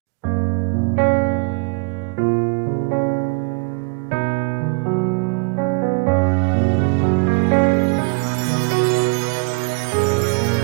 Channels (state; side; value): quieter; left; 31.6 dB